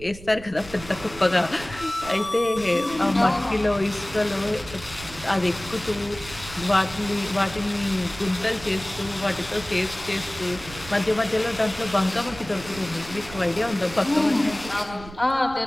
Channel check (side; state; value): right; noise; rumble, 16 dB below the sound